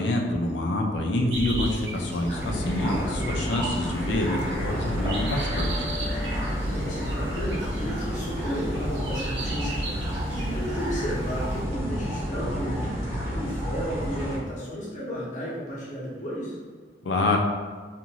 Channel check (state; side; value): normal; both; correlation 0.63